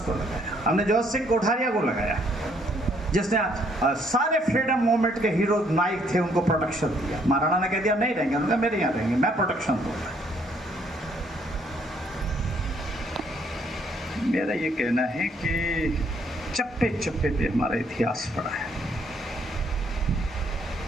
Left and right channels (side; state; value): both; normal; correlation 0.67